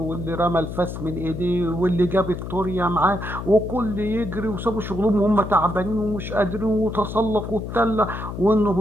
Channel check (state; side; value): noise; left; hum, 7 dB below the sound